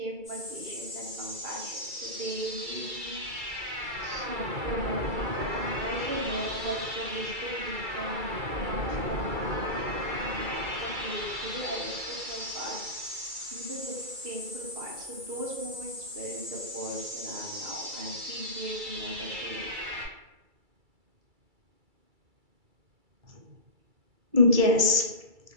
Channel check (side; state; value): left; late; 2.3 ms